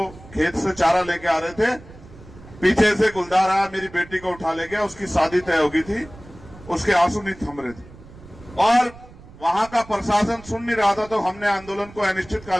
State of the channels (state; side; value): noise; right; rumble, 20 dB below the sound